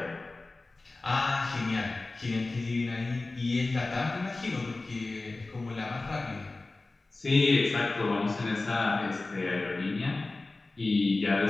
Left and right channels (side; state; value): right; quieter; 3.3 dB